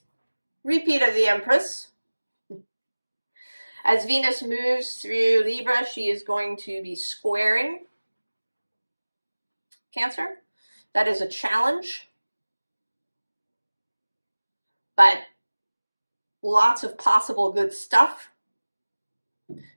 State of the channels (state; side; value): inverted; both; correlation -1.00